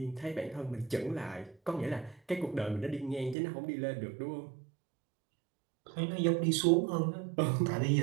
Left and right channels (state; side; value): drops out; left; at 3.4 s